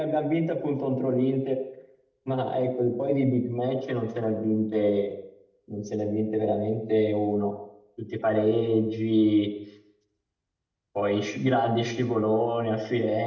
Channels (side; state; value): both; identical; correlation 1.00